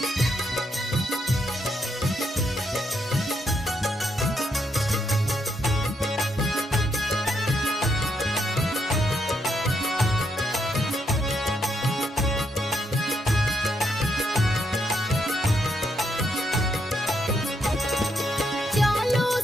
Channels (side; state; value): both; normal; correlation 0.78